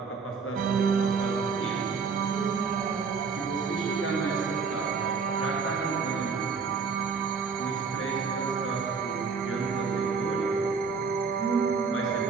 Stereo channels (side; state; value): left; quieter; 5.3 dB